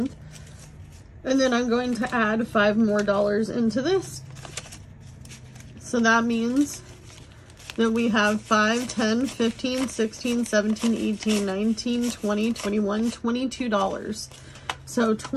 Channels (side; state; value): both; identical; correlation 1.00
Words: And then I'm going to add $5 more into this. So that means that we have 5, 10, 15, 16, 17, 18, 19, 20, 21, $22. So